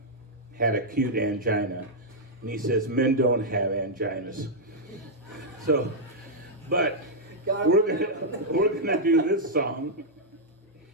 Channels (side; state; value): both; normal; correlation -0.06